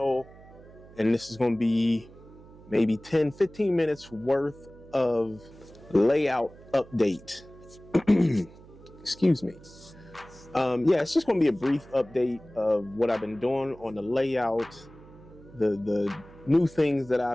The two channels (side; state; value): right; noise; hum, 21 dB below the sound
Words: And this is going to be maybe 10-15 minutes worth of layout update. Excuse me. Yeah, it's just going to be a brief update of what I've been doing on the layout, the new things that